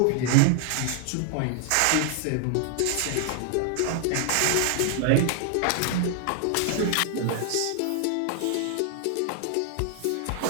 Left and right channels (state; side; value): different; both; correlation 0.00